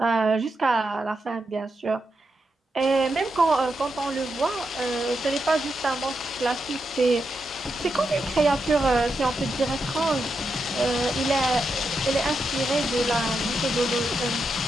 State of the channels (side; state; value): both; normal; correlation 0.85